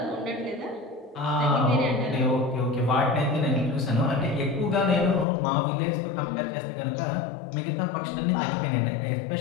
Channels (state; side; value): drops out; right; at 5.2 s